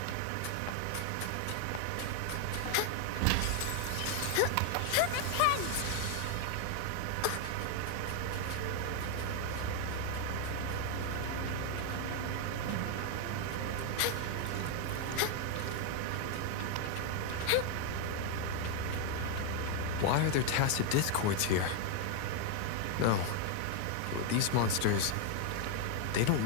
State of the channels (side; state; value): both; different; correlation 0.01